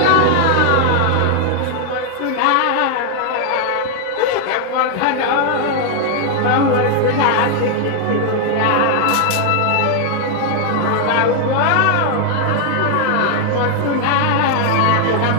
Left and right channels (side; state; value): both; different; correlation 0.00